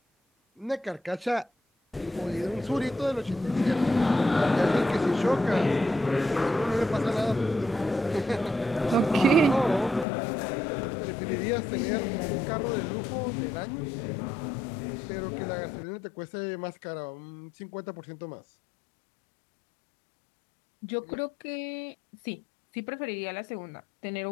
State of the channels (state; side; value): drops out; right; at 10.1 s